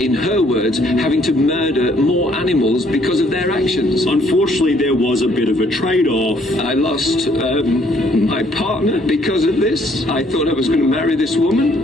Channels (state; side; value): normal; both; correlation 0.65